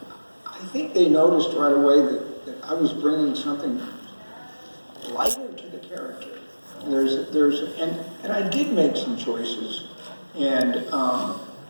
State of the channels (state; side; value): inverted; both; correlation -1.00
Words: think they noticed right away that I was bringing something lighter to the character. And I did make some choices, and a